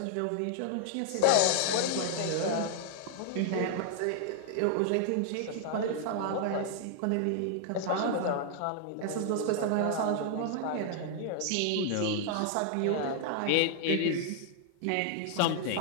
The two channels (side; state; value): both; different; correlation -0.01